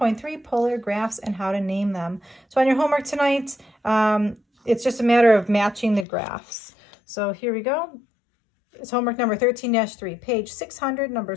polar graphs and how to name them. So on your homework tonight, it's just a matter of matching the graphs. So here we go. It's homework number 13-3, page 600,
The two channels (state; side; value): drops out; right; at 6.1 s